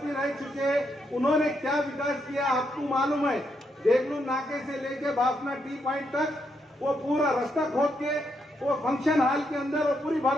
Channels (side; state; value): both; normal; correlation 0.79